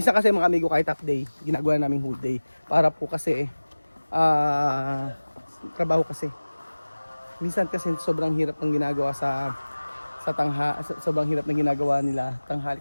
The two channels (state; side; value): inverted; both; correlation -1.00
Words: kasi mga amigo kahit half day, ginagawa namin whole day. Para po kasi trabaho kasi. Minsan kasi sobrang hirap ng ginagawa sa sobrang hirap ng ginagawa nila